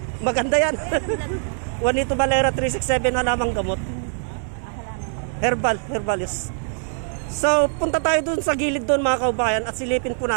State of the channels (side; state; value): left; silent; 64 dB below the other